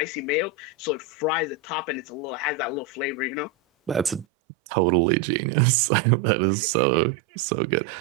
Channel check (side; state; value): left; drops out; at 4.2 s